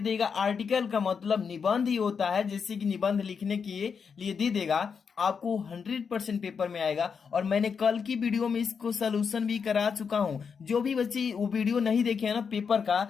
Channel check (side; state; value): right; quieter; 6.1 dB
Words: आर्टिकल का मतलब निबंध ही होता है, जैसे कि निबंध लिखने के लिए दे देगा। आपको 100% पेपर में आएगा। और मैंने कल की वीडियो में इसको सोल्यूशन भी करा चुका हूं। जो भी बच्चे वो वीडियो नहीं देखे हैं ना पेपर